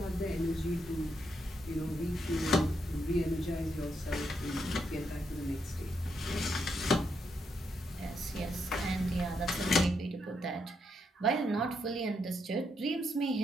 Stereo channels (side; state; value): both; normal; correlation 0.79